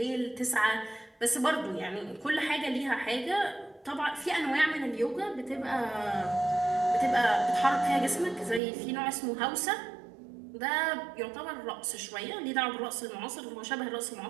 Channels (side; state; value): left; drops out; at 8.6 s